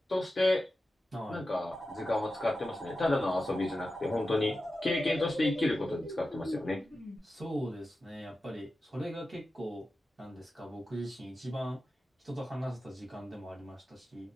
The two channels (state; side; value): normal; both; correlation 0.92